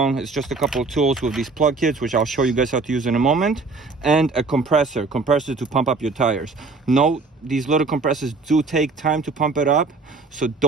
It's just a couple of tools with these plug kits, which I'll show you guys how to use in a moment, and a compressor to pump up your tires. No, these little compressors do take time to pump it up, so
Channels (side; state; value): left; quieter; 3.9 dB